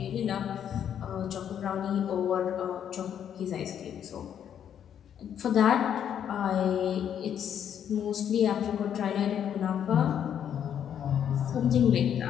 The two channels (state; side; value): quieter; right; 9.2 dB